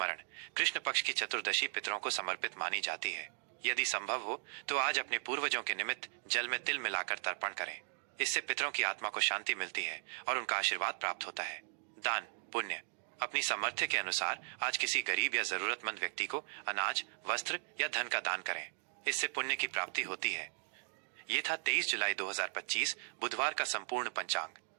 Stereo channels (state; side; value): silent; left; 53 dB below the other